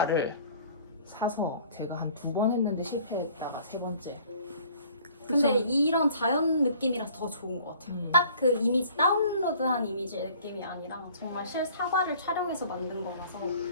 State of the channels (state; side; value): inverted; both; correlation -0.53